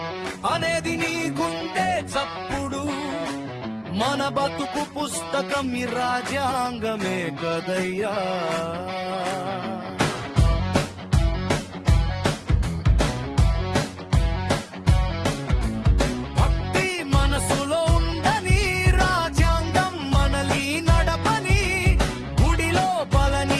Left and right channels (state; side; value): identical; both; correlation 1.00